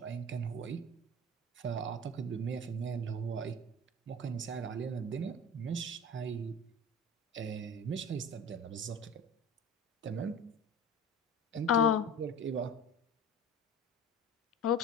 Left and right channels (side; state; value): both; normal; correlation 0.36